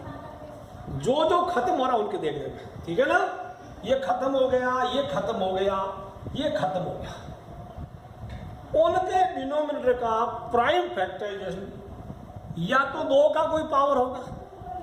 जो जो खत्म हो रहा उनके देख लेंगे, ठीक है ना। ये खत्म हो गया, ये खत्म हो गया, ये खत्म हो गया, उनके डिनोमिनेटर का प्राइम फैक्टराइजेशन या तो 2 का कोई पावर होगा,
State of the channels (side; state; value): both; identical; correlation 1.00